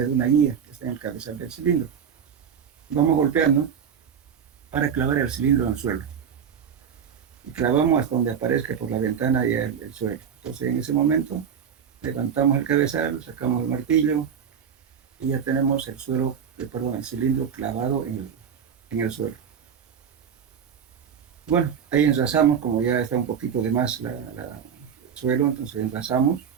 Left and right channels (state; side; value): quieter; left; 7.6 dB